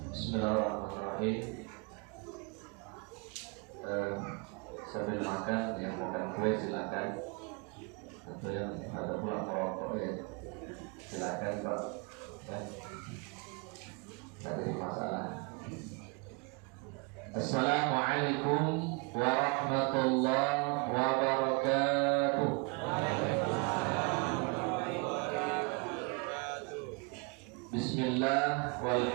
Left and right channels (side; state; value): left; quieter; 31.3 dB